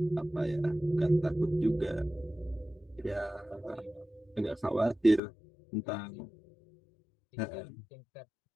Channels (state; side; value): drops out; right; at 5.2 s